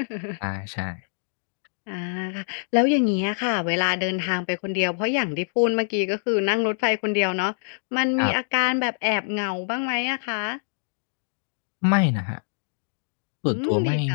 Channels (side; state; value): right; silent; digital silence